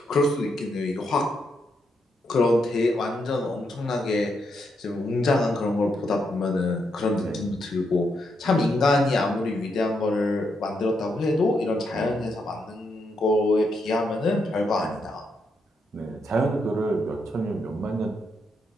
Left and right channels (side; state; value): both; normal; correlation 0.80